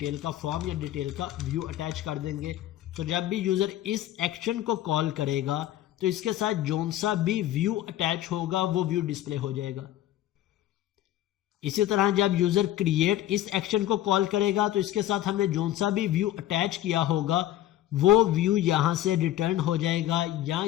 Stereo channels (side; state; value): right; quieter; 13.4 dB